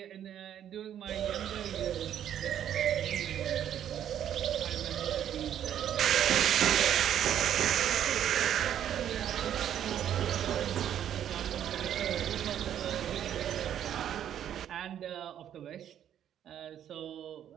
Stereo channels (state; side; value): quieter; left; 10.2 dB